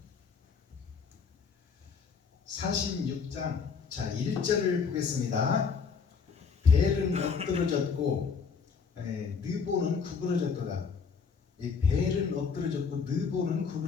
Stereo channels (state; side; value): quieter; right; 5.6 dB